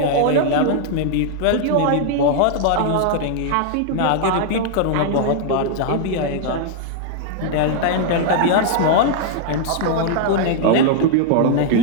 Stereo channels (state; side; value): different; both; correlation -0.01